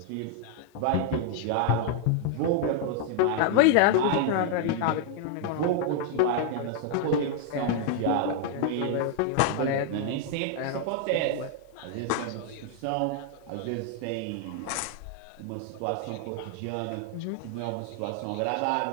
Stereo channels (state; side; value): different; both; correlation 0.00